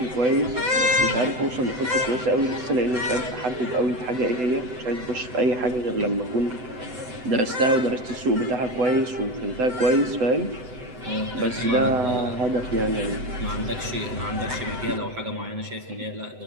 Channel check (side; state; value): left; late; 8.0 ms